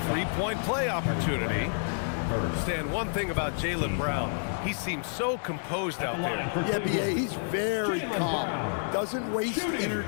three-point play opportunity. Stan, one thing about Jaylen Brown, he seems so composed out there. Yeah, B.A., he's very calm. Doesn't waste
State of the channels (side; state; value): right; silent; digital silence